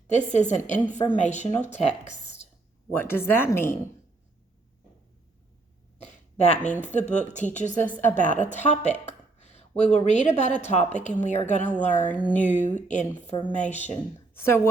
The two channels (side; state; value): left; quieter; 3.4 dB